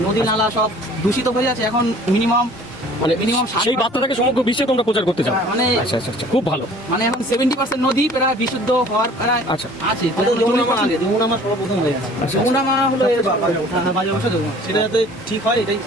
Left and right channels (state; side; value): normal; both; correlation 0.50